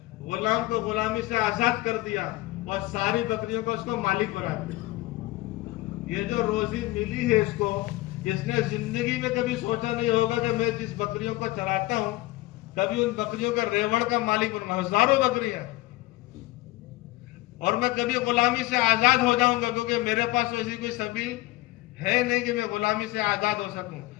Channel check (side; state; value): right; quieter; 19.1 dB